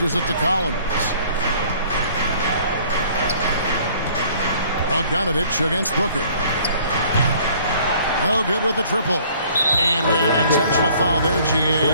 it to Collins. Bogdanovich against Booker. No good with the triple. And we had an intentional foul there,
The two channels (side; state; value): both; inverted; correlation -0.56